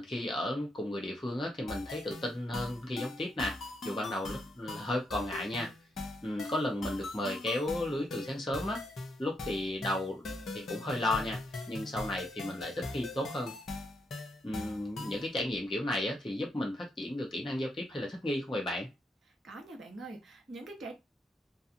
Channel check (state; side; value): normal; both; correlation 0.79